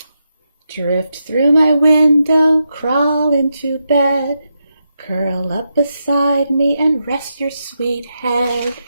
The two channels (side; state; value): both; inverted; correlation -0.85